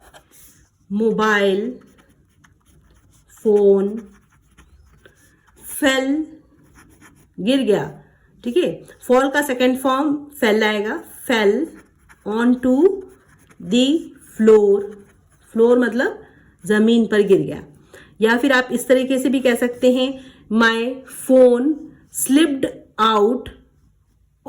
mobile phone fell, गिर गया। ठीक है, फॉल का सेकेंड फॉर्म फेल आएगा, fell on to the floor, floor मतलब जमीन पर गिर गया। या फिर आप इस तरीके से भी कह सकते हैं my phone slipped out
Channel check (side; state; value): both; identical; correlation 1.00